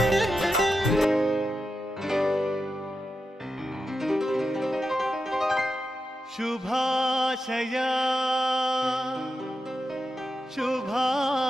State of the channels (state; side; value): normal; both; correlation 0.88